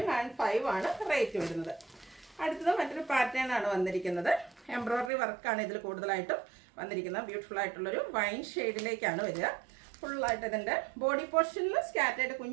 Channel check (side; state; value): left; drops out; at 5.1 s